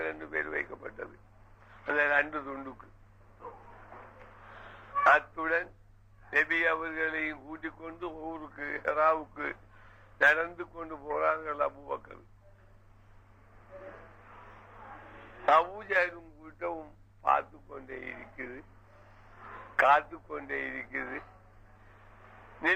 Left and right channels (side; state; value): both; identical; correlation 1.00